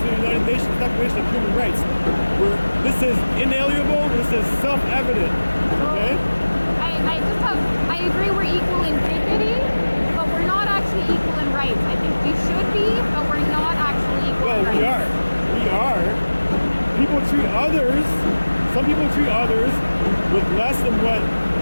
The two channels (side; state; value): both; inverted; correlation -1.00